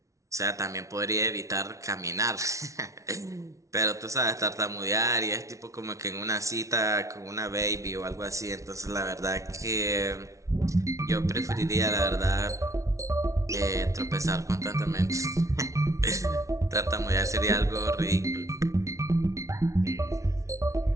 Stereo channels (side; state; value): left; late; 0.15 ms